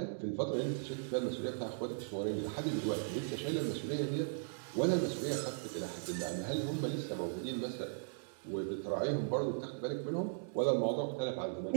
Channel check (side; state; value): left; silent; digital silence